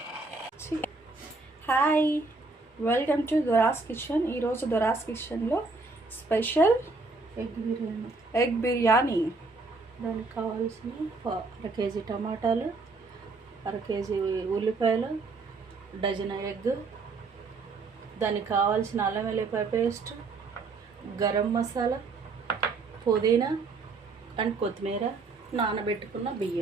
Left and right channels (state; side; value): quieter; left; 3.8 dB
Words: Hi, welcome to Dora's kitchen. ఈరోజు దొరాస్ కిచెన్లో స్పెషల్ ఎగ్ బిర్యానీ. దానికి కావాల్సిన అర కేజీ టమాటాలు, అర కేజీ ఉల్లిపాయలు, డజన్ ఎగ్, దానికి కావాల్సిన అల్లం వెల్లిపాయ పేస్ట్, గరం మసాలా, పుదీనా అండ్ కొత్తిమీర, నానబెట్టుకున్న